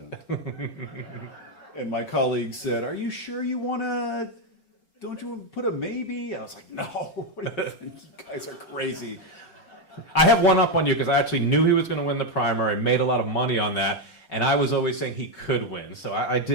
And my colleague said, "Are you sure you don't you want to put a maybe?" I was like, "No, what do you think? You guys are crazy." I have one up on you, because I actually knew he was going to win the primary, made a lot of money on that, and I was always saying he could win. So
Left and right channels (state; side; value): late; right; 5.3 ms